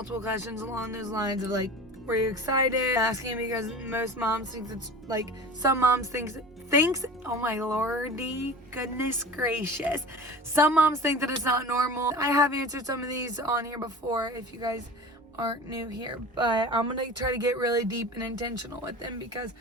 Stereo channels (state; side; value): normal; both; correlation 0.36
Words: questions along those lines of like, were you excited? Asking because most moms think it's like, some moms thinks, oh my lordy, goodness gracious. Some moms think that it's not normal. I have answered some of these on here before if you guys aren't new here, but I'm gonna try to get really deep and intentional with them because